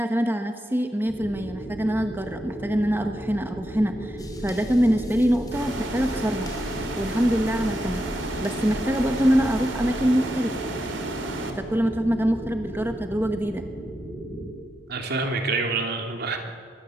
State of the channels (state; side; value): normal; both; correlation 0.85